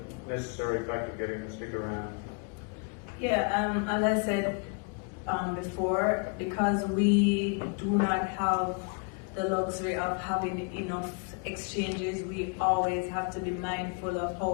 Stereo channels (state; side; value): quieter; right; 35.9 dB